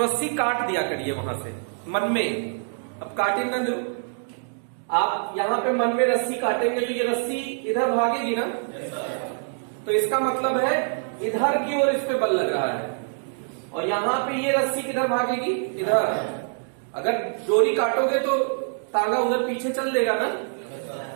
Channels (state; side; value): silent; left; digital silence